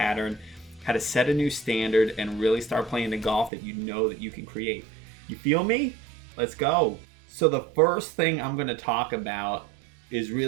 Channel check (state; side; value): drops out; left; at 3.5 s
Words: how to set a new standard, and really start playing the golf that you know that you can create. You feel me? Let's go. So the first thing I'm going to talk about is